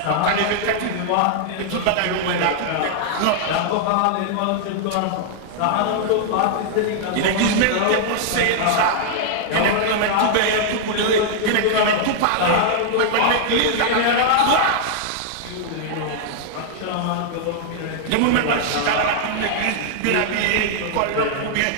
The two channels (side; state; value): both; different; correlation -0.01